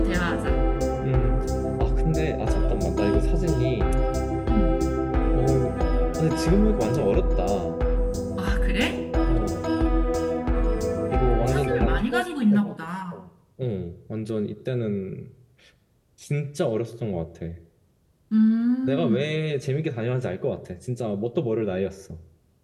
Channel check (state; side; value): identical; both; correlation 1.00